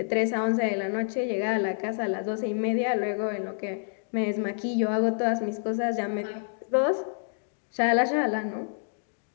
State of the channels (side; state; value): right; silent; digital silence